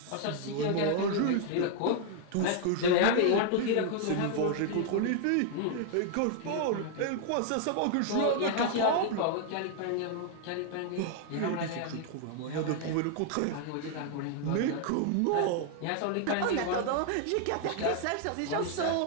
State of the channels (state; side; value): different; both; correlation 0.00